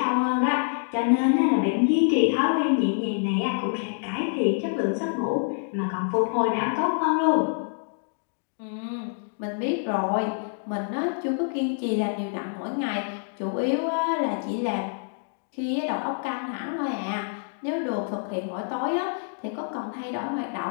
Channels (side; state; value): right; silent; digital silence